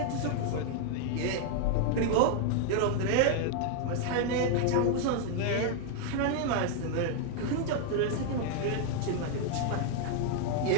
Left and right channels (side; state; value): both; different; correlation 0.00